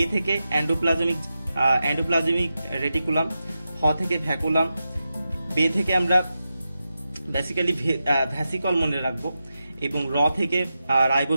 থেকে এন্ডোপ্লাজমিক রেটিকুলাম, হ থেকে ভ্যাকুলাম, বে থেকে আমরা বেসিক্যালি ভ্যাসিকল মনে রাখবো, এবং র থেকে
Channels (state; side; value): inverted; both; correlation -0.90